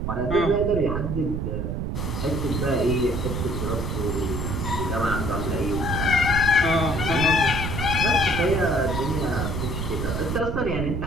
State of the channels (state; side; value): noise; right; rumble, 2 dB below the sound